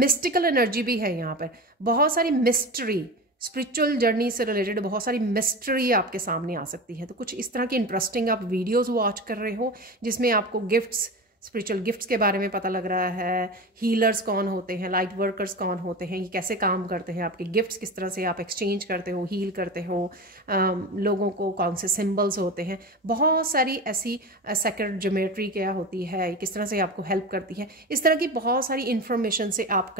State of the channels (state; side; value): normal; both; correlation 0.28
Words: एनर्जी भी है यहाँ पर, बहुत सारी मिस्ट्री, स्पिरिचुअल जर्नी से रिलेटेड बहुत सारी मिस्ट्री आपके सामने आ सकती है। तो कुछ इस तरह की इंटरेस्टिंग आप वीडियोस वॉच कर रहे हो जिसमें आपको गिफ्ट्स स्पिरिचुअल गिफ्ट्स के बारे में पता लग रहा है, हीलर्स कौन होते हैं, लाइट वर्कर्स कौन होते हैं, ये कैसे काम करते हैं, आपके गिफ्ट्स किस तरह से आप एक्सचेंज करते हो, हील करते हो, लोगों को कौन से सिंबल्स होते हैं, बहुत सारी ऐसी सेक्रेड ज्योमेट्री क्या होती है, किस तरह से आपको हेल्प करती है, इस तरह की बहुत सारी इन्फॉर्मेशन से आप